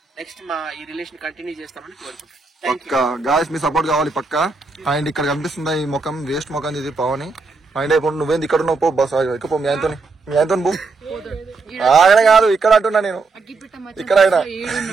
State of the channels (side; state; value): left; quieter; 4.1 dB